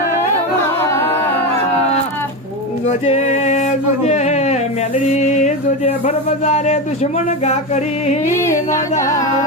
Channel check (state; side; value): normal; both; correlation 0.16